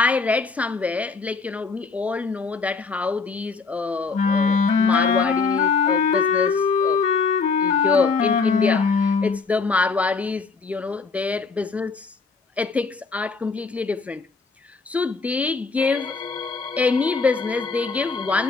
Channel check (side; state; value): right; quieter; 4.6 dB